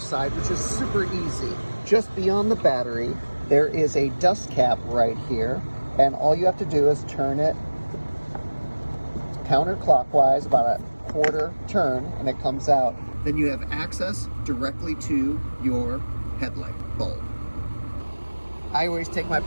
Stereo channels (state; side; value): inverted; both; correlation -1.00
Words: side, which is super easy. Just beyond the battery, there is a dust cap right here, and all you have to do is turn it counterclockwise, about a quarter turn, and it comes out. Then you have access directly to your headlight bulb. I always take my